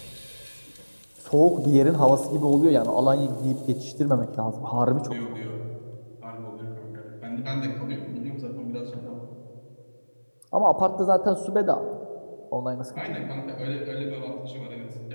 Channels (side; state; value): both; inverted; correlation -1.00